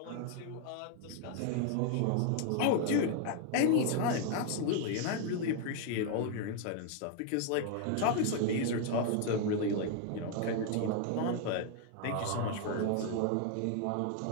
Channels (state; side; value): different; both; correlation 0.00